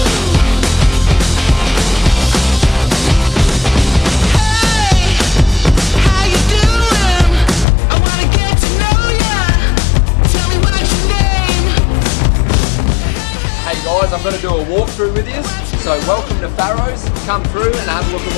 I'm going to do a walkthrough with you, so welcome to Farrows. Come through and have a look at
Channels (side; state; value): right; drops out; at 7.7 s